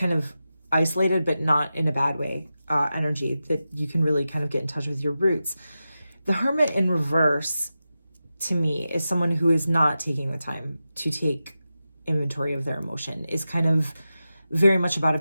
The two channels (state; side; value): inverted; both; correlation -0.92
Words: of isolated, but not in a bad way, energy that you can really kind of get in touch with your roots. The Hermit in reverse, to me, is someone who is not taking the time to take inventory of their emotion, is kind of very much about